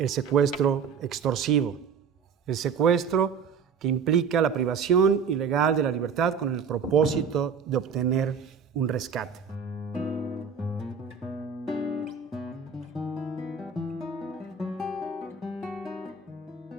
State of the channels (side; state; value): left; quieter; 6.1 dB